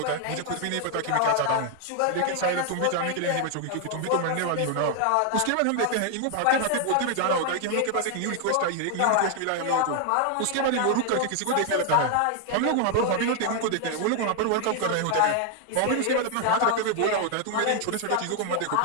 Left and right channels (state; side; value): different; both; correlation 0.00